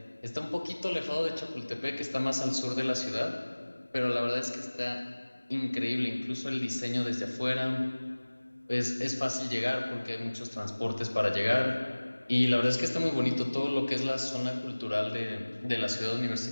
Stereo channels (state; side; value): inverted; both; correlation -1.00